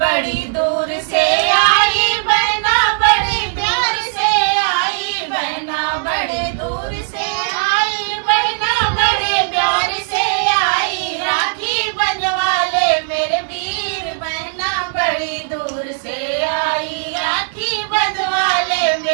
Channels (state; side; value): silent; left; 60 dB below the other